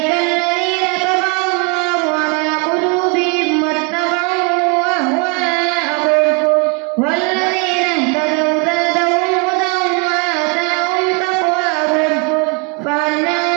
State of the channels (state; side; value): quieter; left; 32.4 dB